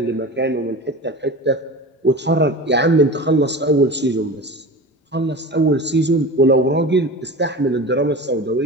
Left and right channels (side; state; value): both; normal; correlation 0.33